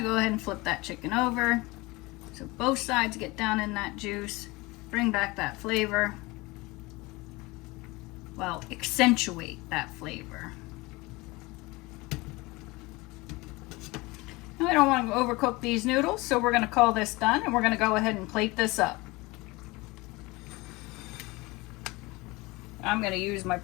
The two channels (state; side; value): quieter; right; 23.0 dB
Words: go ahead and flip that chicken over so both sides get down in that juice, bring back that flavor. Well, accentuate that flavor. Now, I don't want to overcook these noodles, so we're going to call this done and we're going to go ahead and plate this up. I'm going to use my